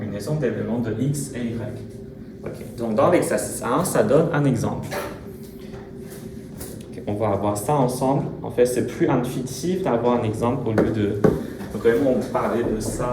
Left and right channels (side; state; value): both; identical; correlation 1.00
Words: d'éléments de x et y. Okay. Donc, dans l'exercice 1, ça donne un exemple. Okay. On va voir ça ensemble. En fait, c'est plus intuitif d'avoir un exemple au lieu de vraiment parler de